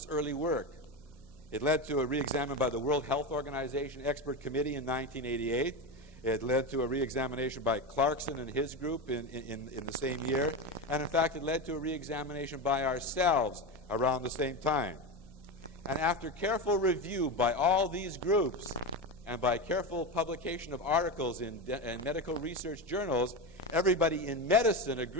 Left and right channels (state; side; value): normal; both; correlation 0.18